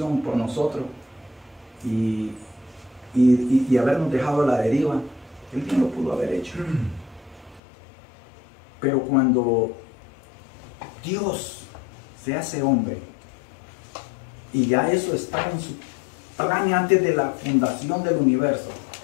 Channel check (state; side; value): drops out; right; at 7.6 s